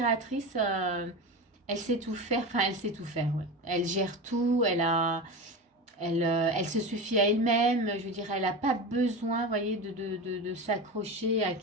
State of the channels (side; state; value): both; normal; correlation 0.25